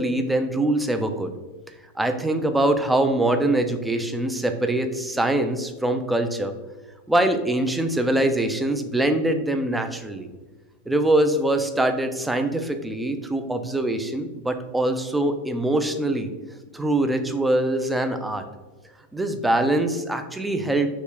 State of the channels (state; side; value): normal; both; correlation 0.65